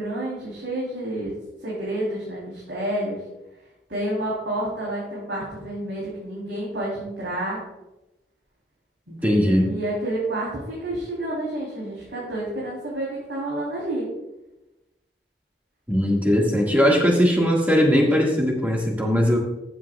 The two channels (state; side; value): normal; both; correlation 0.73